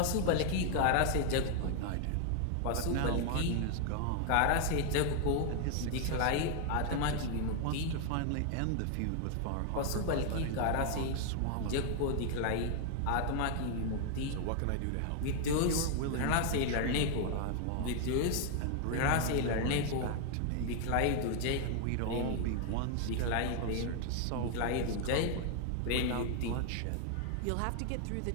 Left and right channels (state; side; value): different; both; correlation 0.00